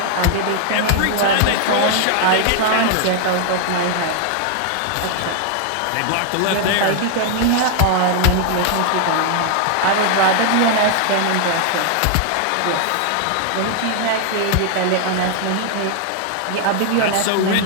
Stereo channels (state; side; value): different; both; correlation 0.00